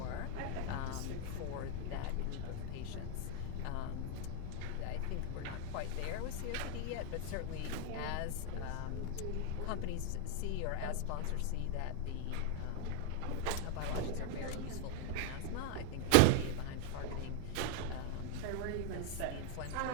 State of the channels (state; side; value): different; both; correlation 0.00